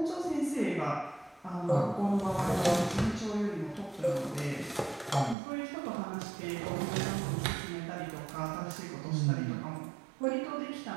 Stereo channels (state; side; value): drops out; left; at 5.4 s